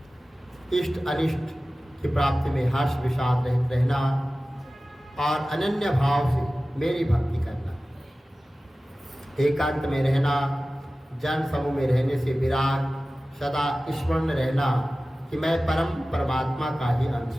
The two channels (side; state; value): both; normal; correlation 0.96